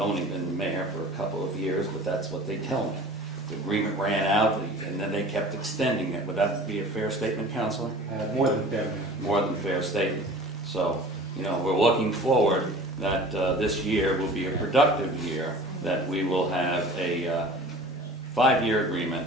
been the mayor for a couple of years, but that's what they tell me. The agreement ran out, and then they kept extending it. Would that be a fair statement, Counselor? More than fair. More than fair statement. So, you know, we're looking forward that this year will be a productive year, that we will have a 5-year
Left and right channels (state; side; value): normal; both; correlation 0.43